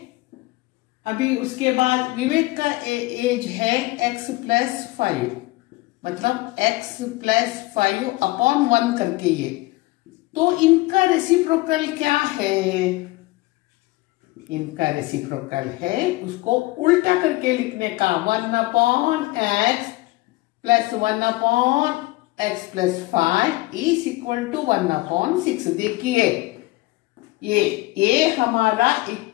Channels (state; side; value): quieter; right; 20.5 dB